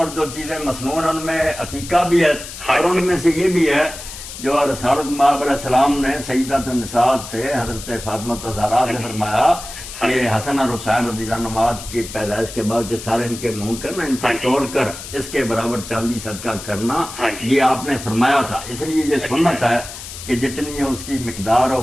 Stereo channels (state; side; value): noise; left; hiss, 12 dB below the sound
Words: جو چیزیں مصنون، ان میں عقیقہ بھی ہے، اور ان میں سے یہ بھی ہے جو رسالت مآب علیہ السلام نے سیدۃ النساء سے حضرت فاطمہ الزہرا سے فرمایا کہ حسن اور حسین رضی اللہ عنہ کی پیدائش کے بعد جو سارے ان کے منہ کرنا، ان کو توڑ کر اس کے برابر چاندی صدقہ کرنا، یہ آپ نے فرمایا تھا۔ اس لیے یہ سنت ہے کہ جتنی اس کی مقدار اور